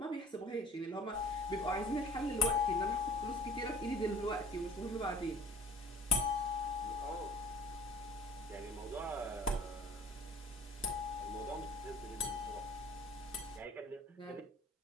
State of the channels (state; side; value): normal; both; correlation 0.47